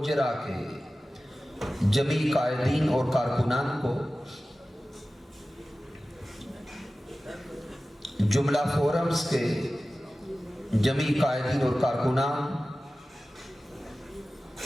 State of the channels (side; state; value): both; normal; correlation 0.96